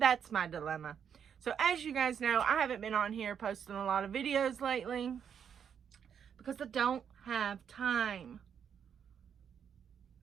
my dilemma. So as you guys know, I haven't been on here posting a lot of videos lately because I don't have time.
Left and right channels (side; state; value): left; quieter; 7.9 dB